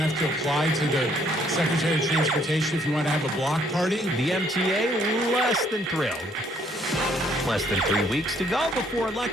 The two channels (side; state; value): both; normal; correlation 0.66